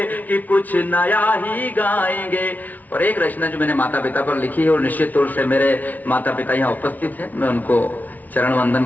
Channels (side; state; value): right; late; 0.077 ms